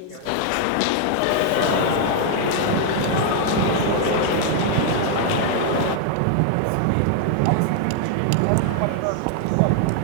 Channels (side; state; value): both; different; correlation 0.00